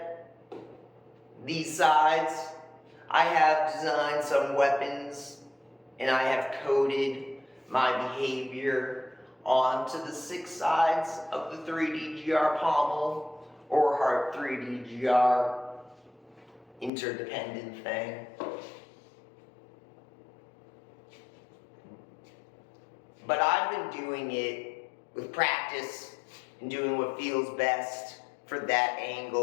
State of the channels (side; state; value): right; drops out; at 16.9 s